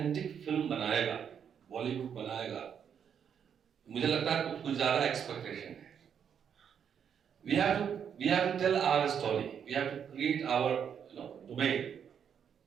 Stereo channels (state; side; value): quieter; left; 7.9 dB